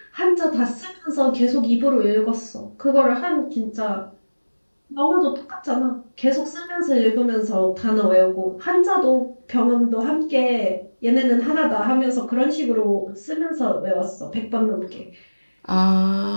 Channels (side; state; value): both; inverted; correlation -1.00